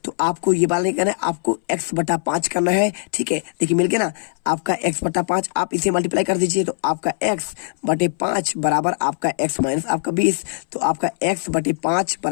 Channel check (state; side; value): silent; right; 63 dB below the other